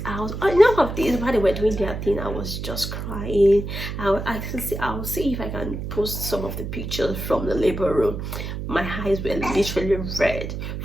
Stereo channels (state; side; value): noise; right; hum, 6 dB below the sound